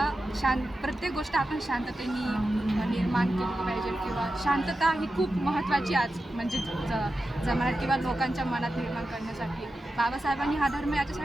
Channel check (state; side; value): normal; both; correlation 0.91